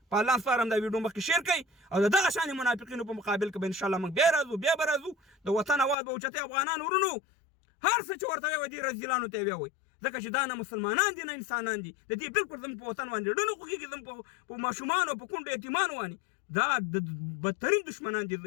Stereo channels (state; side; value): drops out; right; at 6.0 s